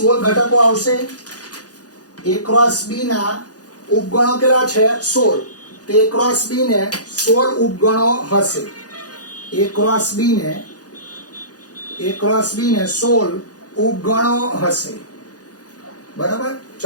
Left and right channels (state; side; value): late; right; 0.68 ms